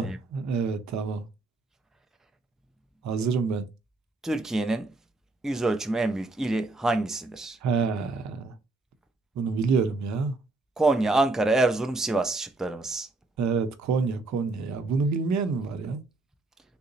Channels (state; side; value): quieter; left; 3.4 dB